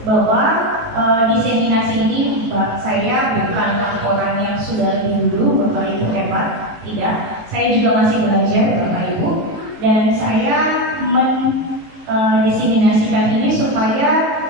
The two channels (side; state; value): left; late; 19 ms